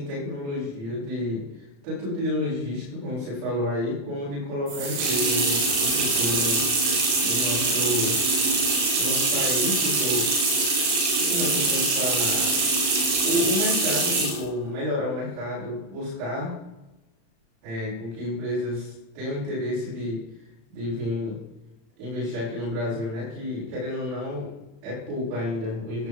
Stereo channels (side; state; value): left; late; 35 ms